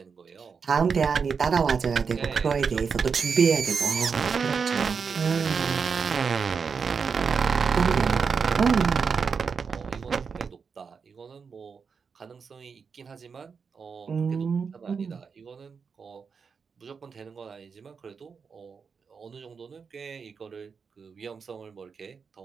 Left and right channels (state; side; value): quieter; left; 5.7 dB